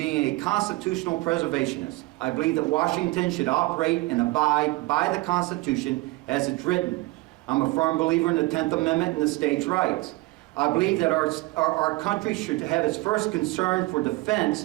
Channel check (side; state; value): left; quieter; 21.7 dB